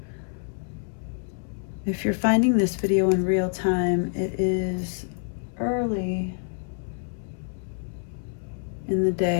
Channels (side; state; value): right; silent; 60 dB below the other